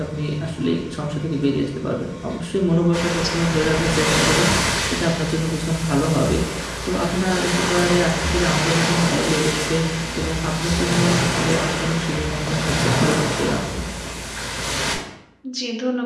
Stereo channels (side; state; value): both; identical; correlation 1.00